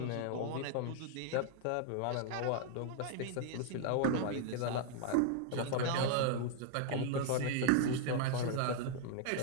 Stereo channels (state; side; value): different; both; correlation 0.00